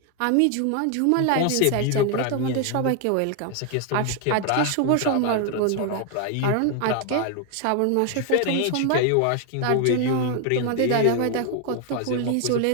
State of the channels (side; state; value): both; different; correlation 0.01